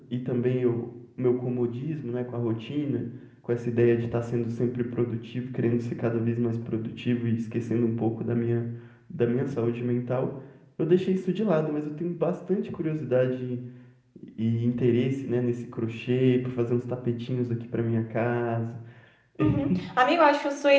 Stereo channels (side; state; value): both; identical; correlation 1.00